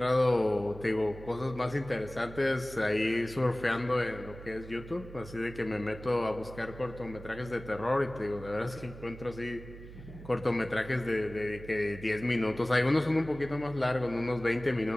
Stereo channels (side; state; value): right; noise; hum, 15 dB below the sound